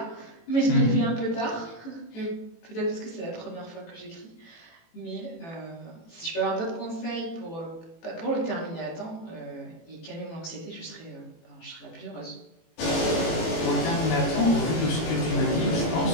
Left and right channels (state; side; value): late; right; 18 ms